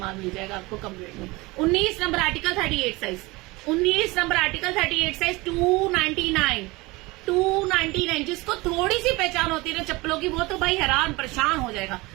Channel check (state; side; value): quieter; left; 22.8 dB